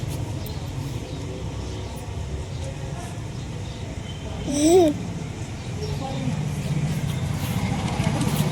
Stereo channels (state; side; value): identical; both; correlation 1.00